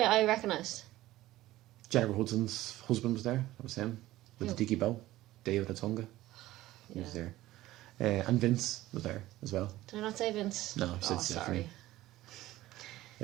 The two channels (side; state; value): left; quieter; 16.2 dB